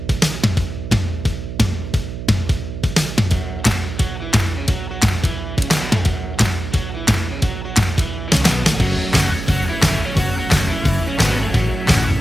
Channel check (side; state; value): right; noise; hum, 8 dB below the sound